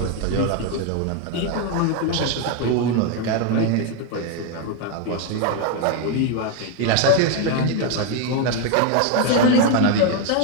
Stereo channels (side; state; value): both; different; correlation 0.01